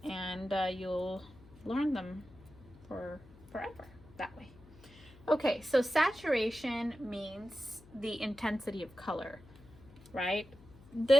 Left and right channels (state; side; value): noise; left; hum, 22 dB below the sound